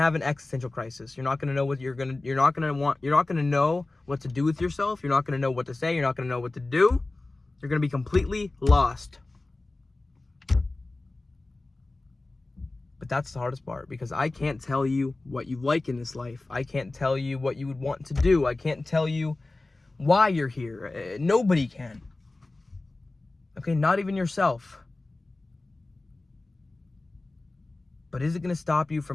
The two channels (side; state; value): right; quieter; 3.1 dB